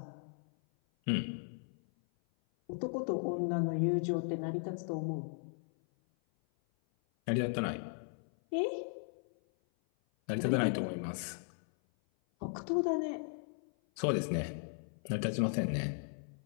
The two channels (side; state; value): right; silent; 53 dB below the other